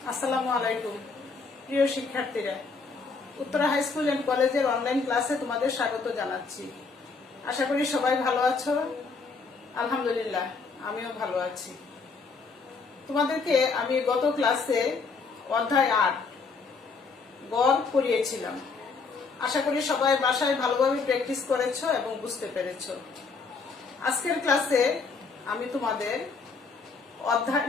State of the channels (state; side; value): quieter; right; 4.6 dB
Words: আসসালামু আলাইকুম প্রিয় শিক্ষার্থীরা, উত্তরা হাই স্কুল এন্ড কলেজের অনলাইন ক্লাসে তোমাদের স্বাগত জানাচ্ছি। আশা করি সবাই ভালো আছো। আলহামদুলিল্লাহ, আমিও ভালো আছি। তোমাদেরকে আমি গত ক্লাসে অধ্যায় ৮ গড় পড়িয়েছিলাম। আশা করি সবাই বাসায় ভালোভাবে প্র্যাকটিস করেছো এবং বুঝতে পেরেছো। আজকের ক্লাসে আমি তোমাদের অধ্যায়